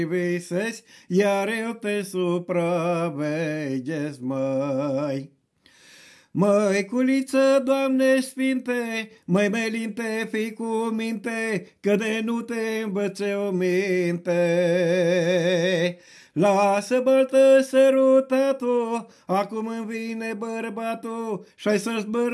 iar eu te supraveghez, măi. Măi, culiță, Doamne sfinte, măi, melinte, fii cu minte, că de nu te învățe o minte. Lasă baltă sărutatul, acum îmi vine bărbatul și-ai să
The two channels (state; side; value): identical; both; correlation 1.00